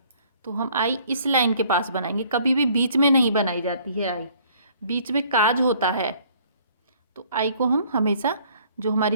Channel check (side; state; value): both; inverted; correlation -0.59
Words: तो हम आई इस लाइन के पास बनाएंगे, कभी भी बीच में नहीं बनाई जाती है आई, बीच में काज होता है। तो आई को हम हमेशा जो हमारी